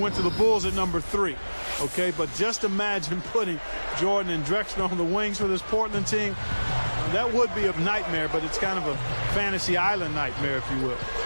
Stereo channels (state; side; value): inverted; both; correlation -1.00